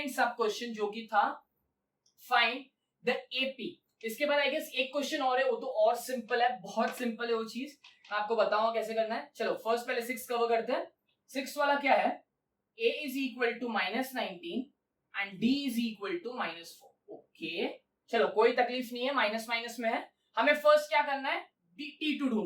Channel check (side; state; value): both; identical; correlation 1.00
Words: sub question, जो कि था फाइंड द एपी। इसके बाद आई गेस एक क्वेश्चन और है, वो तो और सिंपल है, बहुत सिंपल है वो चीज, मैं आपको बताऊंगा कैसे करना है। चलो फर्स्ट पहले 6 कवर करते हैं। 6 वाला क्या है, a is equal to -19 and d is equal to -4। Okay, चलो कोई तकलीफ नहीं है, माइनस माइनस में है। हमें फर्स्ट क्या करना है, T2